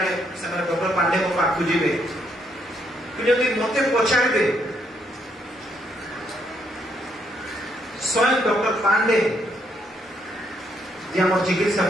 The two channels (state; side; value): normal; both; correlation 0.73